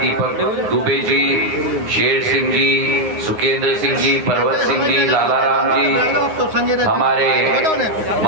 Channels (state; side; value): late; left; 9.6 ms